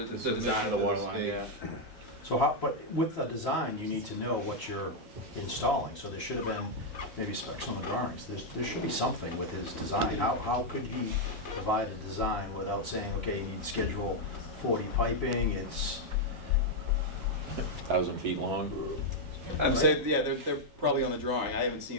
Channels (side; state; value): both; normal; correlation -0.01